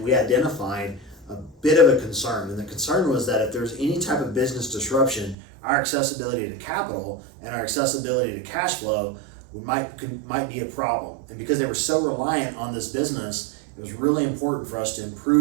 we identified a bit of a concern, and the concern was that if there's any type of business disruption, our accessibility to capital and our accessibility to cash flow might be a problem. And because they were so reliant on this business, it was really important for us to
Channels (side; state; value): left; drops out; at 5.4 s